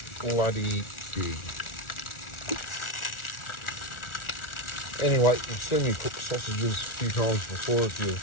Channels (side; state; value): right; late; 1.4 ms